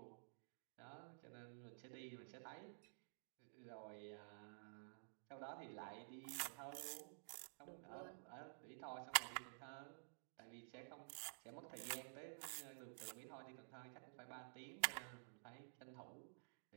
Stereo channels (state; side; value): silent; left; digital silence